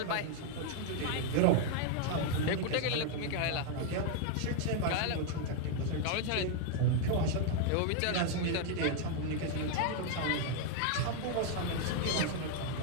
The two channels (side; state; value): both; different; correlation 0.00